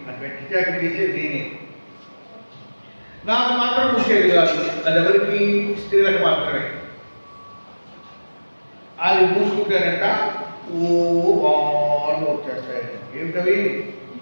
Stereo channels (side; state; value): both; inverted; correlation -1.00